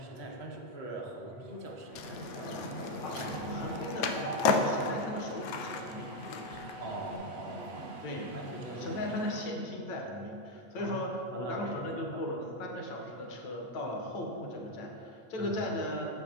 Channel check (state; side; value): late; right; 9.2 ms